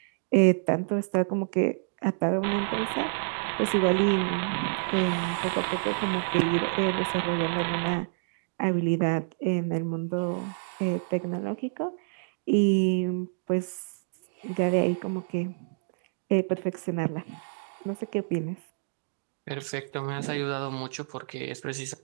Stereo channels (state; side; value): silent; left; digital silence